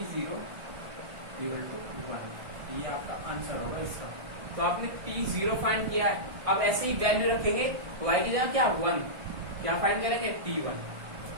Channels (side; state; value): left; late; 1.6 ms